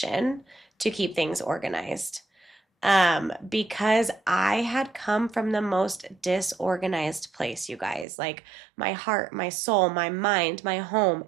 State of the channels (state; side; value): drops out; left; at 8.1 s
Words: to keep things organized. Because I had come from the most disorganized place, you guys. Like, my heart, my soul, my mind, my home,